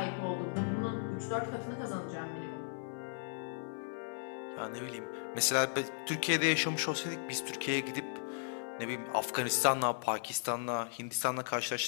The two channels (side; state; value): right; silent; 54 dB below the other